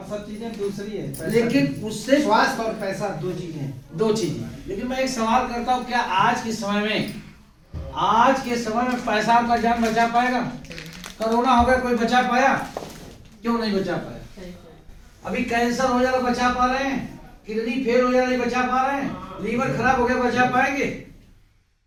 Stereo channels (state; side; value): identical; both; correlation 1.00